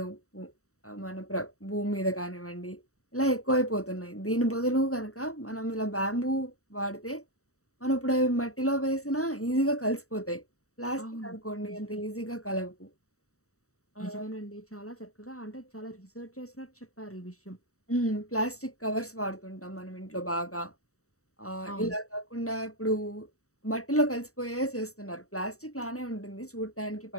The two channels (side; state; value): right; late; 0.65 ms